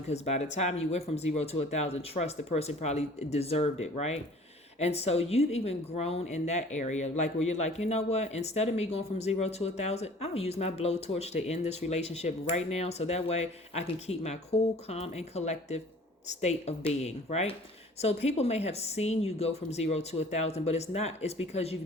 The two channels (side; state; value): both; normal; correlation 0.49